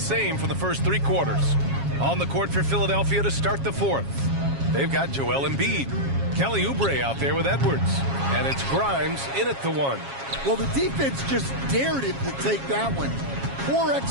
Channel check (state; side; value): late; left; 7.3 ms